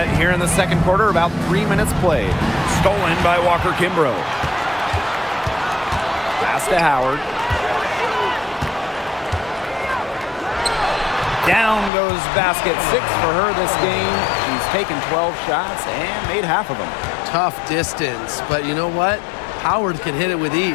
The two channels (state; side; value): drops out; right; at 11.9 s